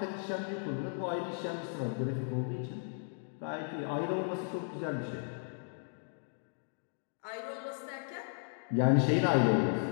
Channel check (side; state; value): right; silent; digital silence